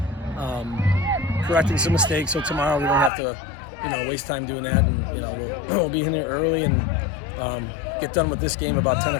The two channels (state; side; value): drops out; right; at 3.1 s